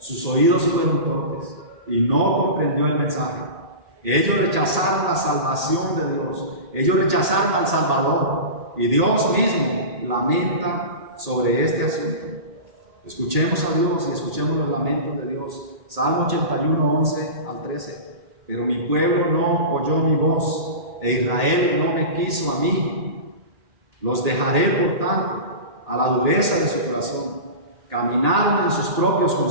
oídos fueron torpes y no comprendió el mensaje. Ellos rechazaron la salvación de Dios, ellos rechazaron al Salvador, y Dios mismo lamenta sobre este asunto. Escuchemos a Dios y escuchemos los lamentos de Dios. Salmo 81, 11 al 13. Pero mi pueblo no oyó mi voz, e Israel no me quiso a mí. Los dejaré, por tanto, a la dureza de su corazón. Caminaron en sus propios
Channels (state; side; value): late; left; 1.8 ms